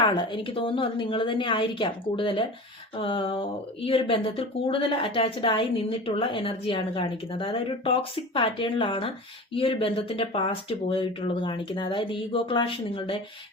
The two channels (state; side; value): normal; both; correlation 0.34